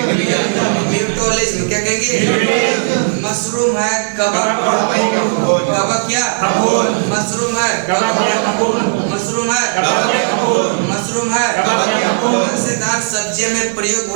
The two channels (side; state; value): left; silent; digital silence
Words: म्यूटोलिज्म। क्या कहेंगे? मशरूम है कवक, कवक क्या? मशरूम है, मशरूम है, मशरूम है। मजेदार सब्जियों में प्रयोग